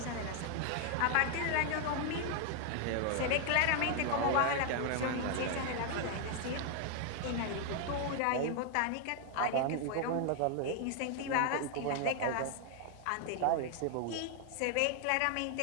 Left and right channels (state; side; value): different; both; correlation 0.00